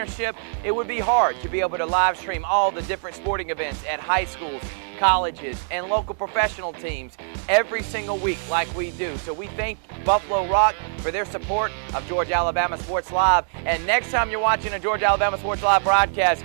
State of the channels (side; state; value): left; silent; digital silence